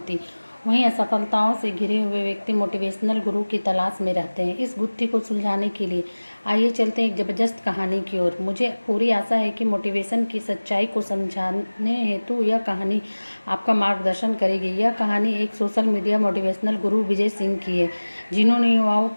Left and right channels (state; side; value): inverted; both; correlation -1.00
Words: वहीं असफलताओं से घिरे हुए व्यक्ति मोटिवेशनल गुरु की तलाश में रहते हैं। इस गुत्थी को सुलझाने के लिए आइए चलते हैं एक ज़बरदस्त कहानी की ओर। मुझे पूरी आशा है कि मोटिवेशन की सच्चाई को समझाने हेतु यह कहानी आपका मार्गदर्शन करेगी। यह कहानी एक सोशल मीडिया मोटिवेशनल गुरु विजय सिंह की है, जिन्होंने युवाओं